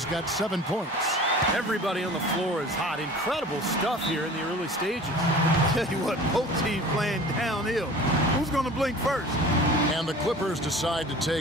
got 7 points. Everybody on the floor is hot. Incredible stuff here in the early stages. Tell you what, both teams playing downhill. Who's going to blink first? And the Clippers decide to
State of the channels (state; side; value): normal; both; correlation 0.42